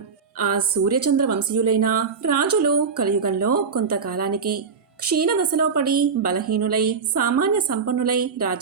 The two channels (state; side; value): quieter; left; 5.5 dB